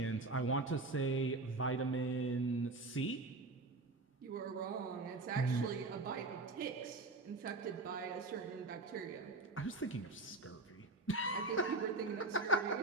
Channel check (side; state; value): left; quieter; 3.3 dB